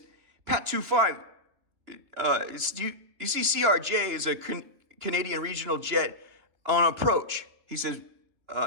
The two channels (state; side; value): late; left; 2.9 ms